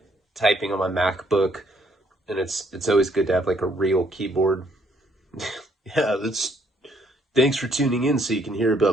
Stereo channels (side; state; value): both; normal; correlation 0.68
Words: typing on my MacBook, and it's always good to have like a real keyboard. Yeah, that's thanks for tuning in so you can hear